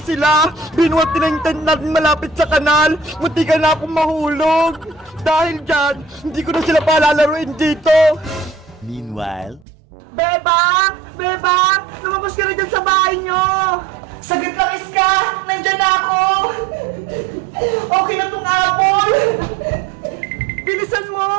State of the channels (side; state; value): left; drops out; at 9.7 s